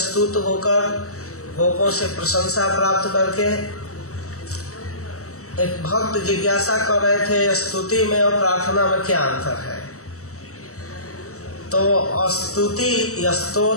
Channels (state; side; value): late; right; 0.65 ms